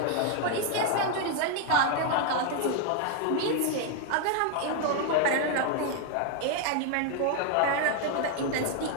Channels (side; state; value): both; different; correlation 0.00